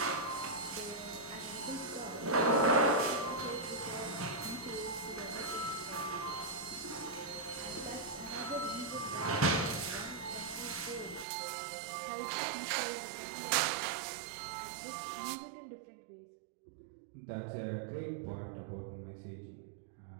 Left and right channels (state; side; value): drops out; left; at 11.2 s